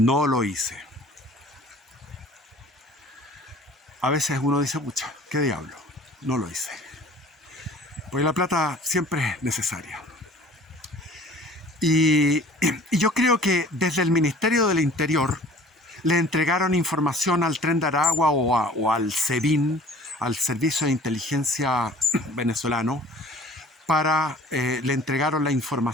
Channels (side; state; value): both; normal; correlation 0.49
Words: lo hice. A veces uno dice, pucha, ¿qué diablo? No lo hice. Porque la plata siempre es necesaria. Y yo creo que desde el Ministerio del Interior le entregaron información al Tren de Aragua o al SEBIN, al Servicio de Inteligencia venezolano, le entregaron la